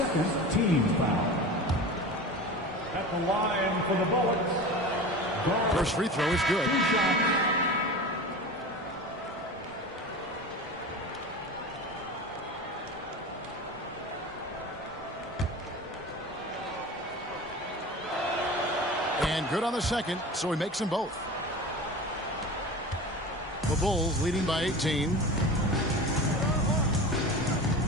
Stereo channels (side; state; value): both; normal; correlation 0.32